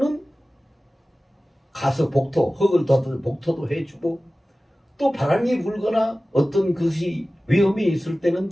가서 흙을 덮어서 복토도 해주고 또 바람이 불거나 어떤 것이 위험이 있을 때는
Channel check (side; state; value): both; normal; correlation 0.96